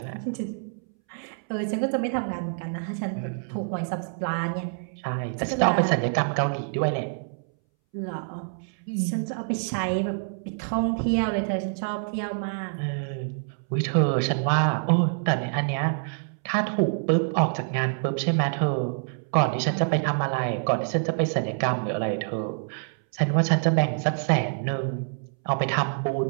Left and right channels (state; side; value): silent; left; 61 dB below the other